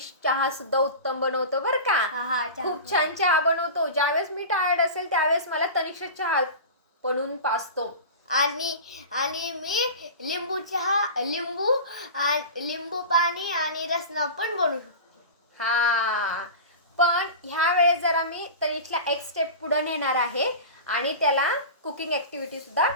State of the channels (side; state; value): both; inverted; correlation -0.31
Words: चहा सुद्धा उत्तम बनवतो बरं का. खूप छान चहा बनवतो. ज्यावेळेस मी टायर्ड असेल त्यावेळेस मला तनिष चहा बनवून पाजतो. आणि मी लिंबू पाणी आणि रसना पण बनवू शकतो. पण ह्या वेळेस जरा मी तनिषला एक स्टेप पुढे नेणार आहे आणि त्याला कुकिंग ॲक्टिव्हिटी सुद्धा